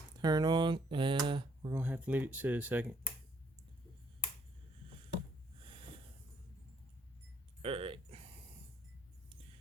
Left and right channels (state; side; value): normal; both; correlation 0.67